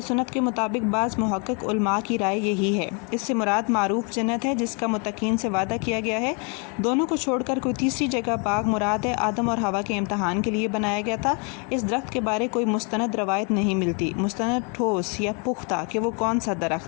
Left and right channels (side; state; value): right; quieter; 35.2 dB